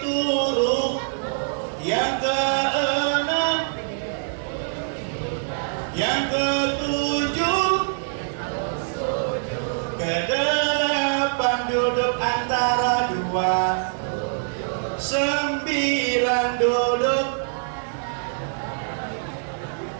rukuk, yang keenam, yang ketujuh, ke-8 duduk antara 2, 9 duduk.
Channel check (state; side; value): silent; left; digital silence